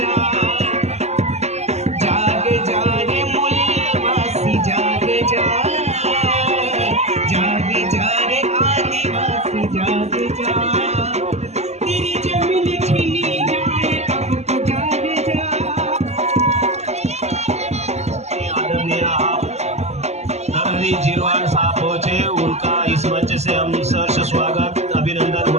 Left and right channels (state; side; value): late; left; 0.32 ms